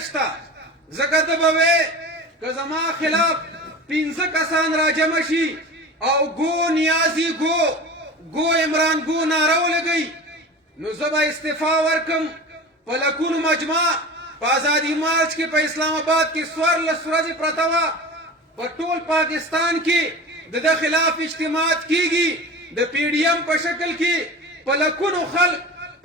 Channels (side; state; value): both; normal; correlation 0.33